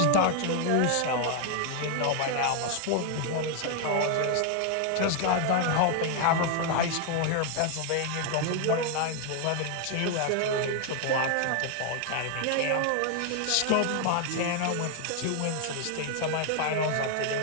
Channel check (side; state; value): both; different; correlation 0.00